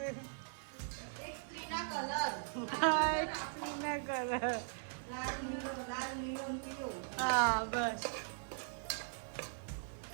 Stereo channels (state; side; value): silent; left; digital silence